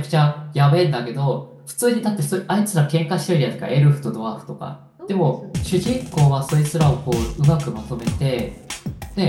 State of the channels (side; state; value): both; identical; correlation 1.00